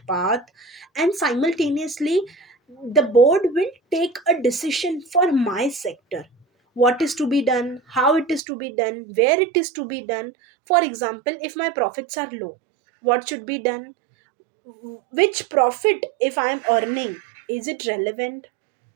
path, and simultaneously the board will take a decision for my sector, what is to be done, how it is to be done, where it is to be done. For example, if my profits are low, what should be done, which profit if I am earning, is it relevant,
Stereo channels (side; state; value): left; drops out; at 8.4 s